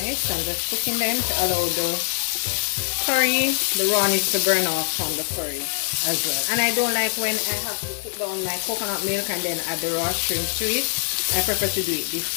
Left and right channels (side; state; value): right; silent; digital silence